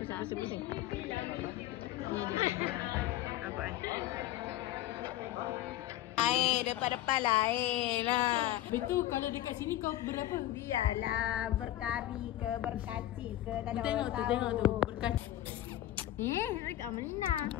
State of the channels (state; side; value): quieter; right; 14.1 dB